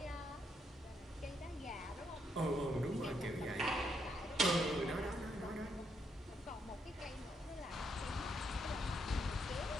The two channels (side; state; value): both; normal; correlation 0.77